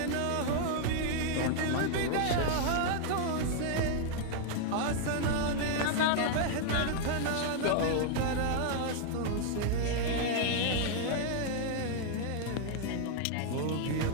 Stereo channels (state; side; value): different; both; correlation 0.00